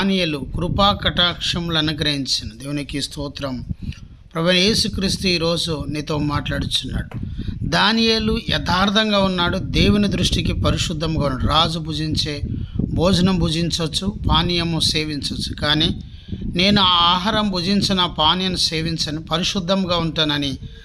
కృపా కటాక్షములు అనుగ్రహించెను. దేవునికి స్తోత్రం. ప్రభువైన యేసుక్రీస్తు ఈరోజు నీతో మాట్లాడుచున్నాడు. దానియేలు యథార్థంగా ఉన్నాడు. దేవుని దృష్టికి పరిశుద్ధంగా ఉన్నాడు. రాజు భుజించే భోజనం భుజించవచ్చు, పానీయము సేవించవచ్చు, కానీ నేను ఆ ఆహారం భుజించిన పానీయం సేవించను, పరిశుద్ధంగా ఉంటానని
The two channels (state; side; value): identical; both; correlation 1.00